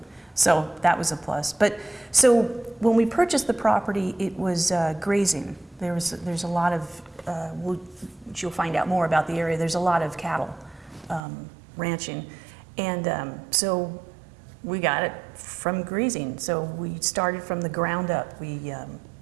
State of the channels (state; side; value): drops out; left; at 11.2 s